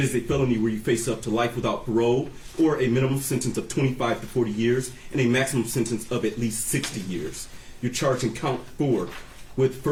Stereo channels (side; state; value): both; identical; correlation 1.00